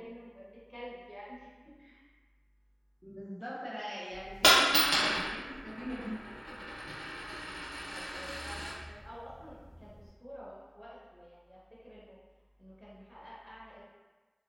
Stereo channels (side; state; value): both; identical; correlation 1.00